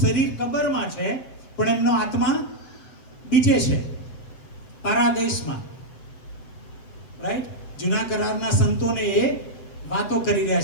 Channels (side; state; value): right; late; 7.8 ms